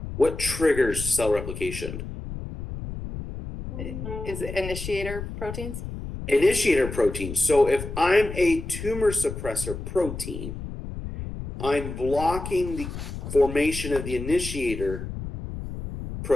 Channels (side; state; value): left; noise; rumble, 8 dB below the sound